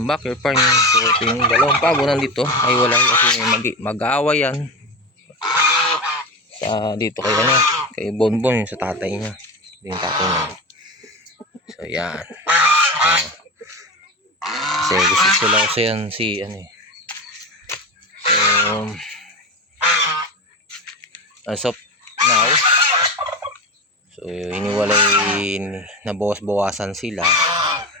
backyard farm. So, ito yung dalawang pabo nandito. Ay wala kasi mag-aaway yan. Sa dito kay Bonbon yung sa tatay niya. Ito yung tatay niya. So, yan. Kasi gusto lang kasi yan si So, as of now, so iniwalay na bawas-bawasan sila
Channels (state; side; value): normal; both; correlation 0.24